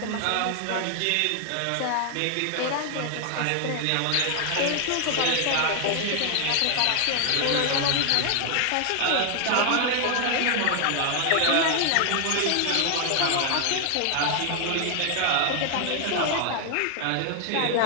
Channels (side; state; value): both; different; correlation 0.00